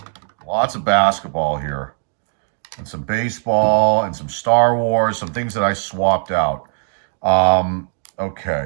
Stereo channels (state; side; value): silent; left; digital silence